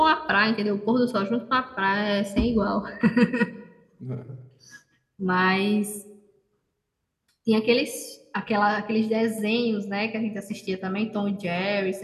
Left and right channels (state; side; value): identical; both; correlation 1.00